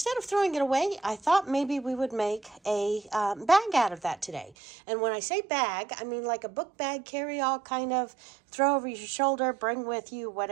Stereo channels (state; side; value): drops out; left; at 4.5 s